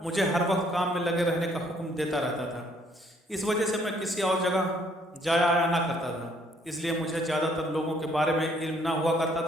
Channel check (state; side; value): normal; both; correlation 0.65